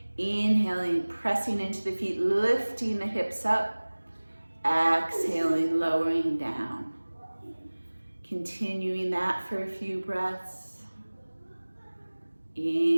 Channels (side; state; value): both; inverted; correlation -1.00